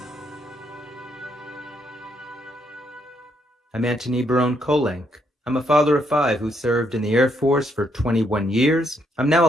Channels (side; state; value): both; normal; correlation 0.75